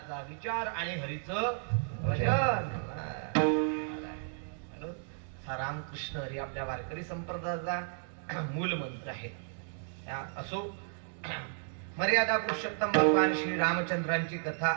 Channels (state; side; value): silent; left; 56 dB below the other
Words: विचार आणि हरीचं भजन. रामकृष्ण हरी आपल्या वारकरी संप्रदायाचा मूल मंत्र आहे. असो, मर्यादा पुरुषोत्तम भगवान श्री रामचंद्रांची कथा